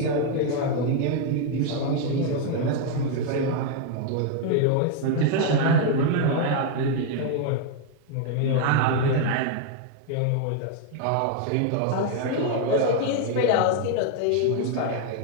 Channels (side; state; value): both; different; correlation 0.00